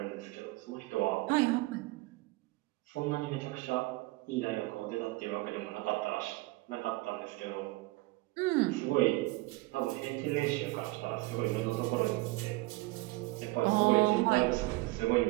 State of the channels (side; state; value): left; quieter; 21.7 dB